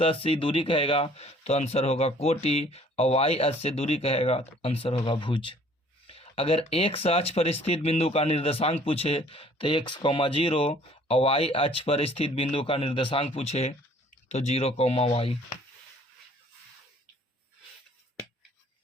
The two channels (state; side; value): normal; both; correlation 0.56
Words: अक्ष से दूरी कहेगा तो आंसर होगा कोटि, और वाई अक्ष से दूरी कहेगा तो आंसर होगा भुज। अगर एक्स अक्ष पर स्थित बिंदु का निर्देशांक पूछे तो एक्स कॉमा 0, और वाई अक्ष पर स्थित बिंदु का निर्देशांक पूछे तो 0 कॉमा वाई।